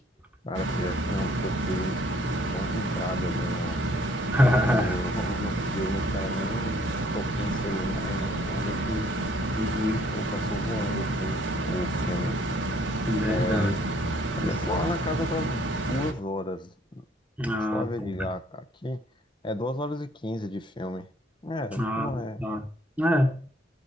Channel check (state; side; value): normal; both; correlation 0.62